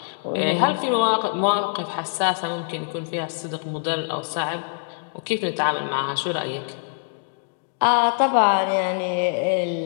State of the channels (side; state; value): right; silent; 63 dB below the other